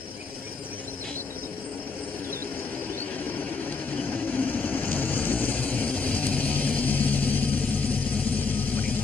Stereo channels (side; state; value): right; quieter; 4.5 dB